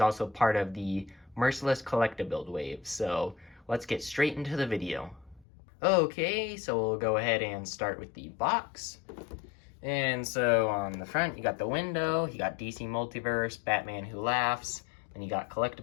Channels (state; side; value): drops out; right; at 5.5 s